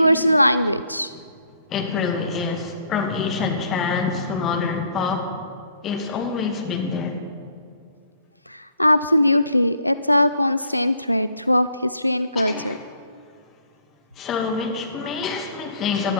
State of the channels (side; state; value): both; inverted; correlation -0.63